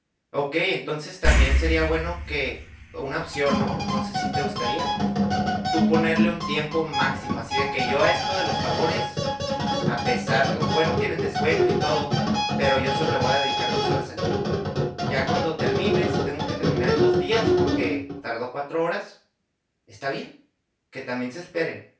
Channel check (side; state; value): both; identical; correlation 1.00